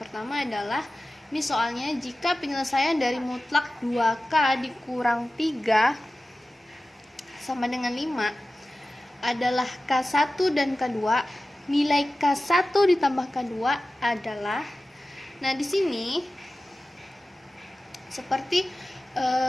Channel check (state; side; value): normal; both; correlation 0.96